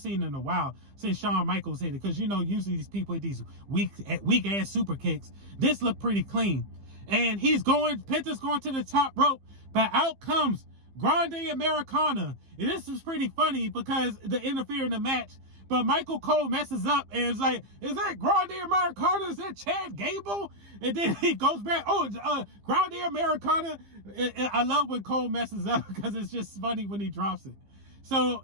in a while since Shawn Michaels hit it. Because, you know, usually these people hit these weak-ass super kicks. This looked pretty clean. And Penta's going to the top rope. But out comes Grande Americana. And this was pretty funny because they interfere in the match. But Michael Cole messes up and is like, is that Grande Americana? Is that Chad Gable? And then he goes back, Grande Americana. I love when Cole messes up because it's just funny when he drops it. So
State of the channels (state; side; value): late; left; 15 ms